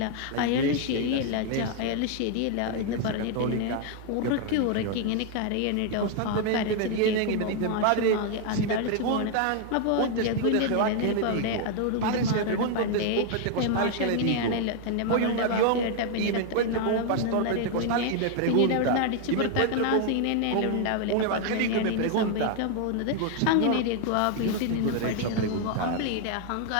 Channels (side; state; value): both; different; correlation 0.00